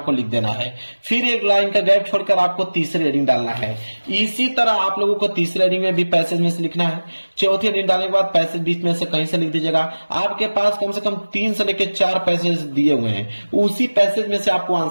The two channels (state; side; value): inverted; both; correlation -1.00